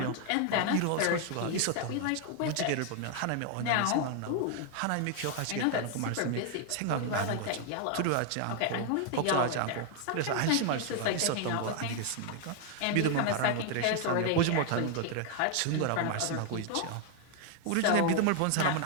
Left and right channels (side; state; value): both; different; correlation 0.00